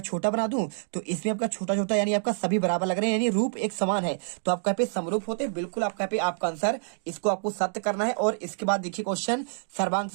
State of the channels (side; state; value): left; silent; digital silence